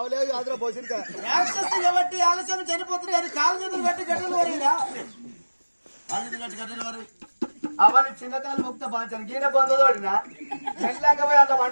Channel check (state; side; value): inverted; both; correlation -1.00